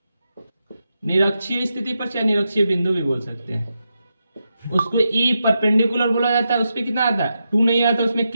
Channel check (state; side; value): inverted; both; correlation -0.87